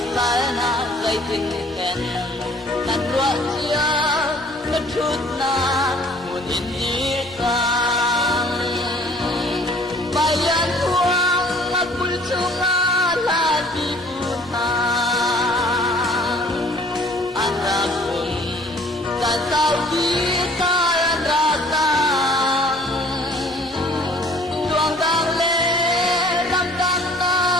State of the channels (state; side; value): normal; both; correlation 0.54